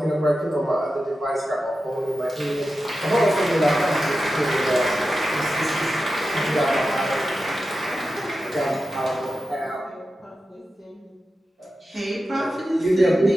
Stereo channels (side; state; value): both; normal; correlation 0.92